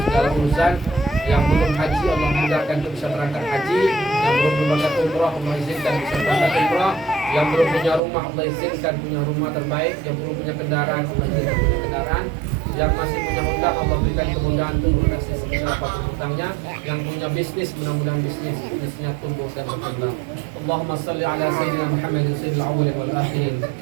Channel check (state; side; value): drops out; left; at 8.0 s